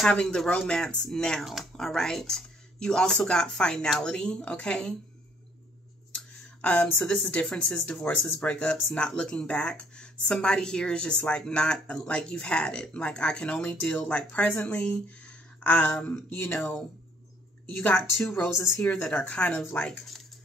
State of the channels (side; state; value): both; normal; correlation 0.64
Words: the romance now, all right? You also got finality, okay? So this is differences, divorces, breakups, not looking back. Somebody here is just like, not like you've had it. Like, I can only deal like presently. You know, you got 2 roses here that are kind of like